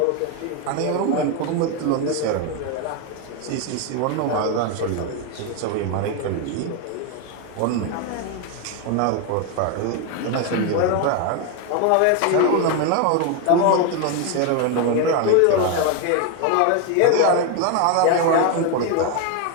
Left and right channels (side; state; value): both; different; correlation 0.02